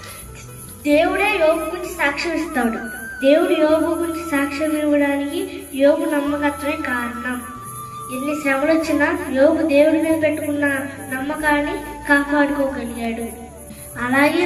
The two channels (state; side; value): identical; both; correlation 1.00